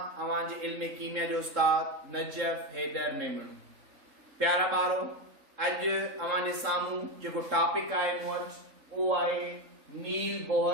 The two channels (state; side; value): late; left; 3.7 ms